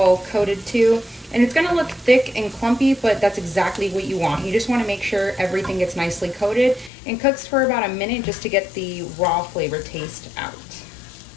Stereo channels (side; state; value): right; drops out; at 6.9 s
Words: coated too. And it's gonna look thick and clumpy, but that's exactly what you want. You just wanna make sure everything gets nicely coated and cooks for about a minute just to get the raw flavor taste out.